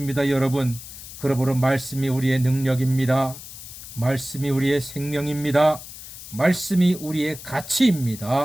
여러분. 그러므로 말씀이 우리의 능력입니다. 말씀이 우리의 생명입니다. 말씀이 우리의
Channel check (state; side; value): noise; left; hiss, 14 dB below the sound